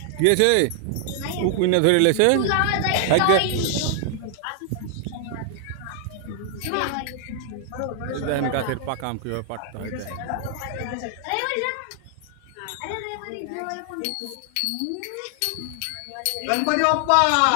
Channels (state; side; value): different; both; correlation 0.00